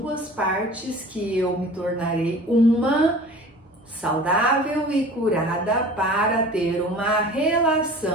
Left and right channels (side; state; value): both; normal; correlation 0.42